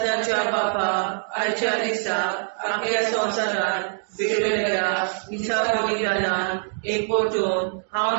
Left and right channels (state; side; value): silent; left; digital silence